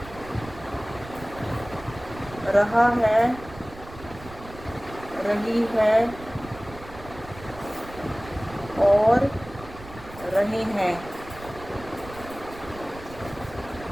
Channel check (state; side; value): noise; right; rumble, 16 dB below the sound